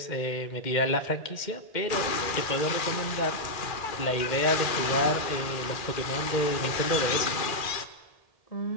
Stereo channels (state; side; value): late; right; 2.3 ms